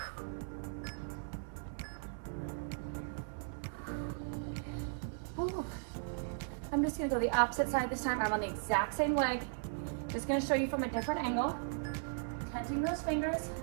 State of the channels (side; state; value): left; silent; 53 dB below the other